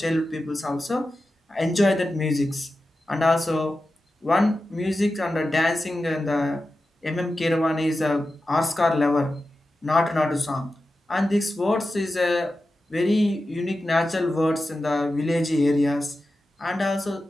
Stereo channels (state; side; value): normal; both; correlation 0.92